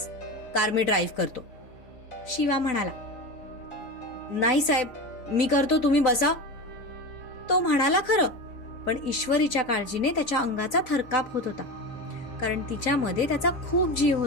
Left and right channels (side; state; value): right; late; 3.9 ms